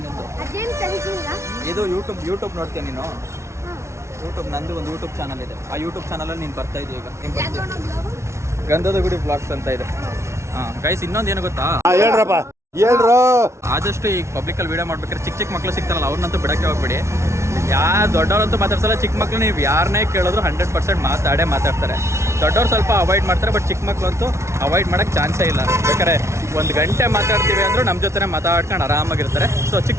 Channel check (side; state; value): left; late; 0.13 ms